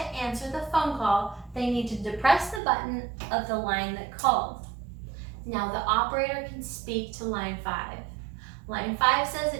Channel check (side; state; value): left; drops out; at 2.6 s